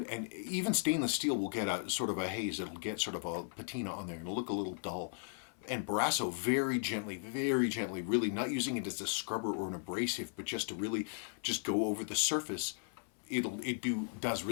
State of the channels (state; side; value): silent; right; 53 dB below the other